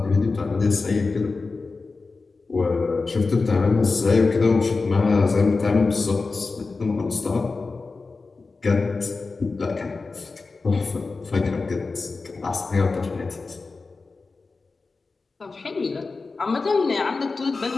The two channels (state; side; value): quieter; right; 4.0 dB